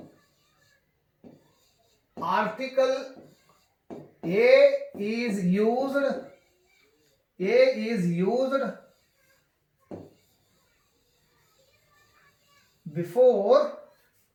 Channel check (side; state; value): both; identical; correlation 1.00